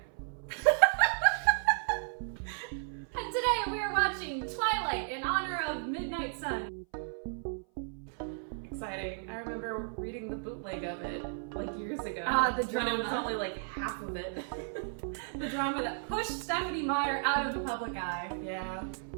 And today we are watching Twilight in honor of Midnight Sun. Exciting. I remember reading the bootleg of it like years ago. The drama. When it was only like half of it. The drama that pushed Stephanie Meyer out of the public eye. Yeah.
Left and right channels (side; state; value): left; silent; 55 dB below the other